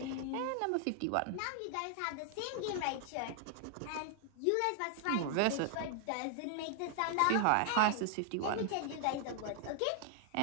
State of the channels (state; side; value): different; both; correlation 0.00